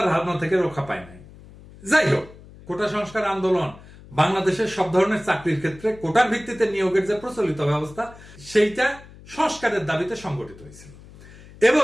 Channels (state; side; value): noise; left; hum, 20 dB below the sound